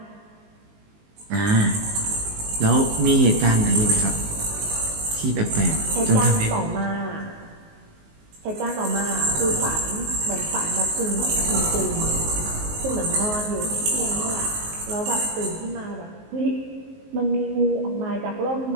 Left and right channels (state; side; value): late; left; 19 ms